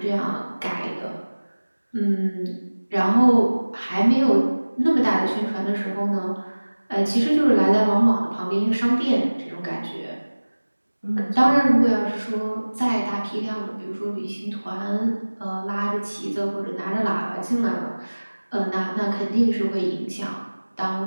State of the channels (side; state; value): both; inverted; correlation -1.00